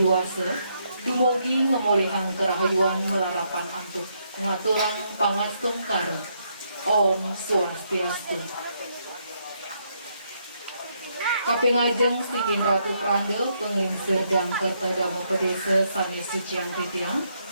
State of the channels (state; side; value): inverted; both; correlation -0.76